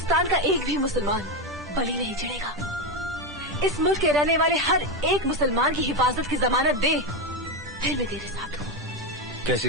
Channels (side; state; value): both; normal; correlation 0.11